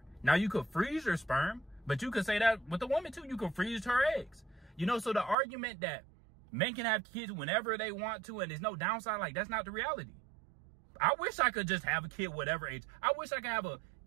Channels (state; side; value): drops out; left; at 5.4 s